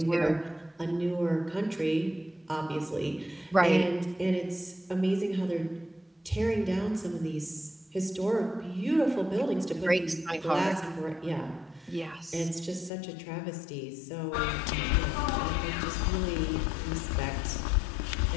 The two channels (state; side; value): drops out; right; at 12.9 s